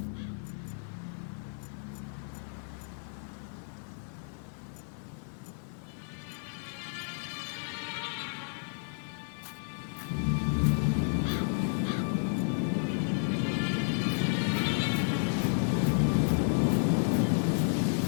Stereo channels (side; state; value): right; silent; digital silence